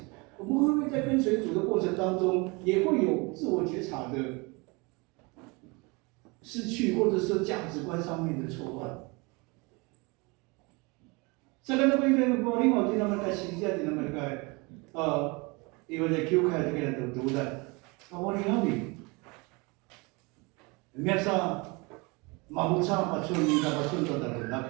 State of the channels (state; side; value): quieter; left; 27.5 dB